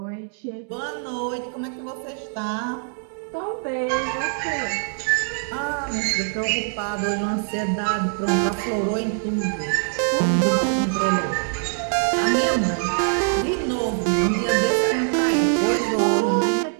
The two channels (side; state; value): left; silent; digital silence